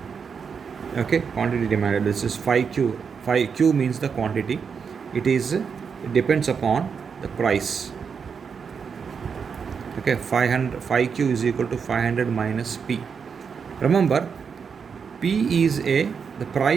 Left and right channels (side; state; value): left; quieter; 6.2 dB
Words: okay, quantity demanded, this is 5q. 5q means the quantity. It depends upon the price, okay. 5q is equal to 500 minus p. Remember, p is the